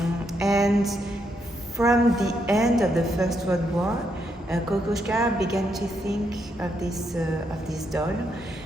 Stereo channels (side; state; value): both; normal; correlation 0.78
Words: And from the end of the First World War, Kokoschka began to think of this doll.